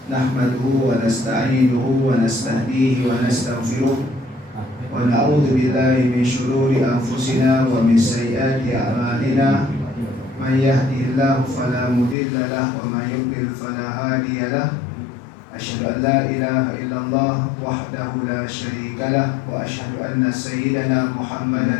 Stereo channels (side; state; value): right; drops out; at 12.2 s